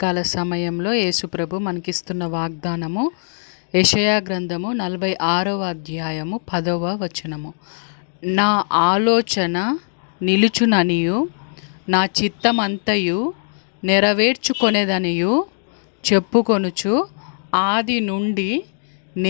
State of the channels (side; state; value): right; silent; digital silence